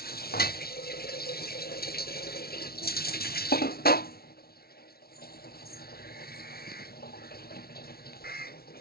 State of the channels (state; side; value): late; right; 0.44 ms